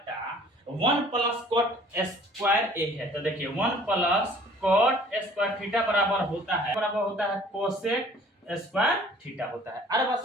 1 प्लस cot स्क्वायर a है। तो देखिए 1 प्लस cot स्क्वायर थीटा बराबर होता है cosec स्क्वायर थीटा होता है। अरे बस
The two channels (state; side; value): normal; both; correlation 0.53